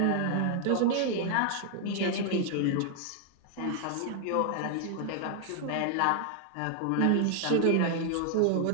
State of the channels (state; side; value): different; both; correlation 0.00